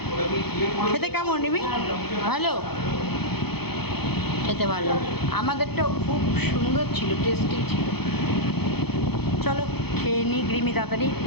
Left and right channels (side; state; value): right; late; 0.97 ms